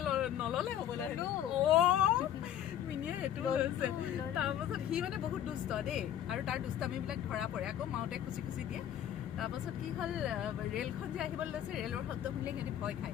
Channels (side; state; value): right; quieter; 10.7 dB